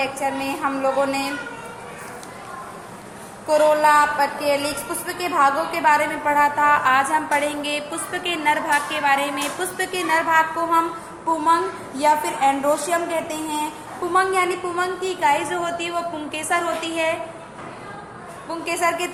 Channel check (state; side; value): identical; both; correlation 1.00